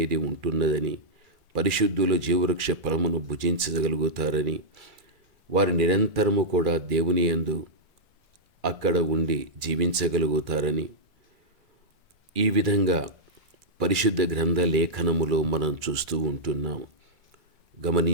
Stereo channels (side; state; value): left; late; 2.3 ms